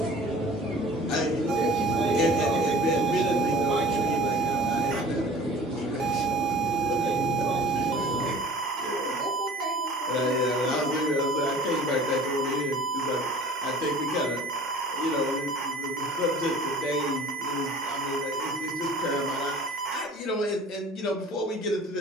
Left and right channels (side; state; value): both; normal; correlation 0.44